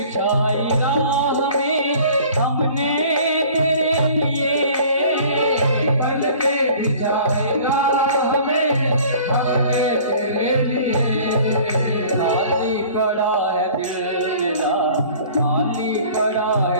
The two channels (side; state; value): both; inverted; correlation -0.49